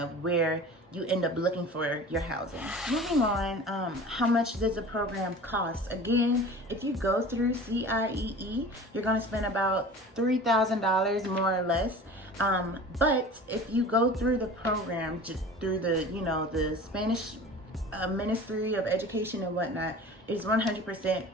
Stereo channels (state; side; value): normal; both; correlation 0.40